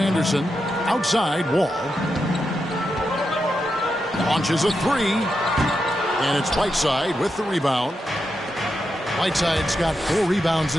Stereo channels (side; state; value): both; normal; correlation 0.86